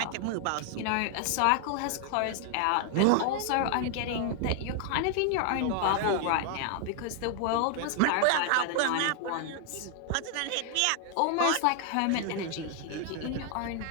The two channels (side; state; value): both; different; correlation 0.00